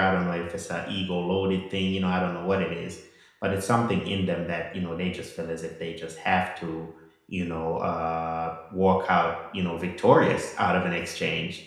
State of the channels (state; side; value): identical; both; correlation 1.00